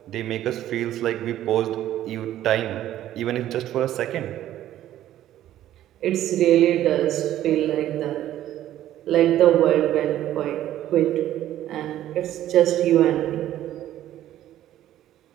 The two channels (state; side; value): quieter; left; 12.8 dB